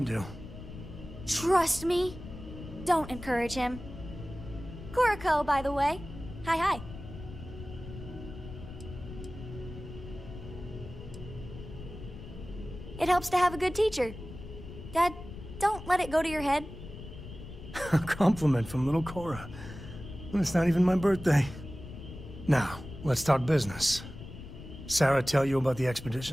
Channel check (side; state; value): left; noise; rumble, 13 dB below the sound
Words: do. Trust me. Don't encourage him. Kuriko, by the way. Hi. It helps to have a good teacher. Dad, don't let it go to your head. A compliment from little Cora. And it's not even my birthday. Now, let's talk business. Sarah tell you about the